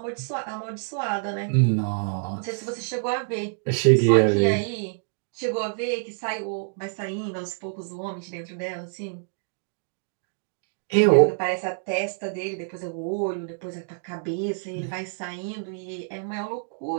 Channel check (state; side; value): silent; left; digital silence